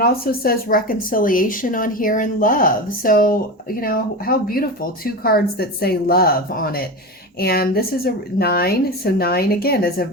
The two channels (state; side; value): normal; both; correlation 0.24